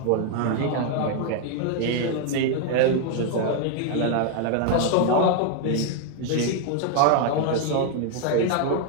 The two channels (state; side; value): different; both; correlation 0.00